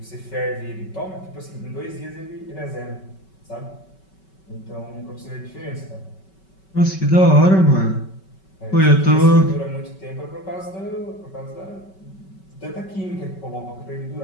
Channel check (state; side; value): late; right; 5.3 ms